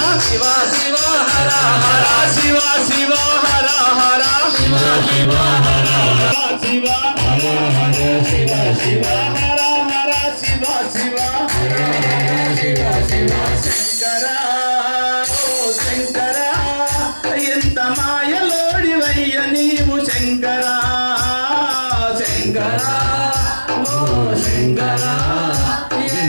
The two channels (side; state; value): both; inverted; correlation -1.00